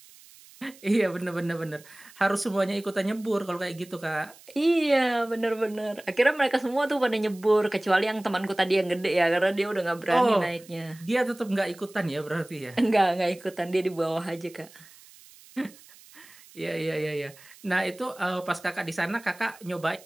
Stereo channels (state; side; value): noise; right; hiss, 23 dB below the sound